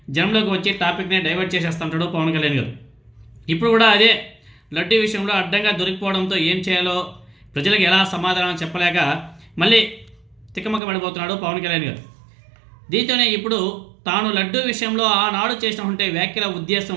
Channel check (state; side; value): drops out; left; at 10.8 s